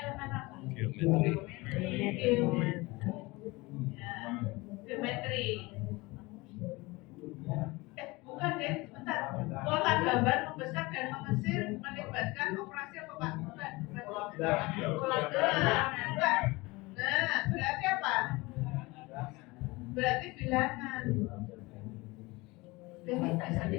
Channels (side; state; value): right; quieter; 23.0 dB